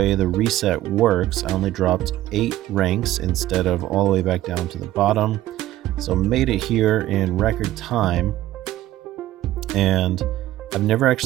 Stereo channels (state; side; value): quieter; left; 14.7 dB